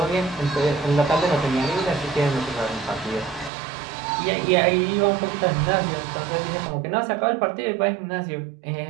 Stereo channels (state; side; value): drops out; left; at 3.5 s